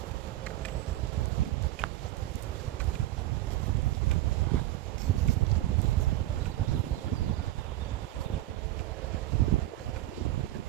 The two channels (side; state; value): left; quieter; 15.0 dB